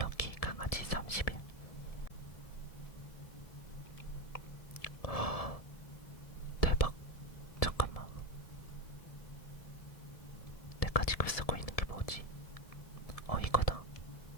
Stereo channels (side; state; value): right; late; 1.7 ms